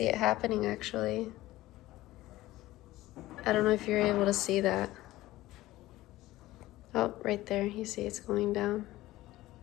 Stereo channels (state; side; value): quieter; right; 16.9 dB